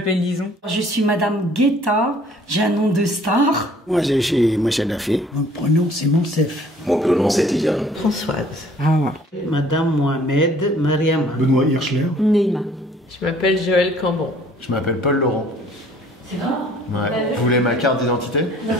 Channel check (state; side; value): normal; both; correlation 0.56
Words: Lison. Je suis Madame Guetta, j'ai un nom de star. Moi, je suis Moussa Dafé. Mon prénom, c'est Monsef. Mon prénom, c'est Tidiane. Françoise. Hawa. Madame Mohamed Mariama. Benoît Hirschler. Neima. Je m'appelle Joël Cambon. Je m'appelle Paul Laurent. C'est vrai? Ouais. Vous voulez ma carte d'identité?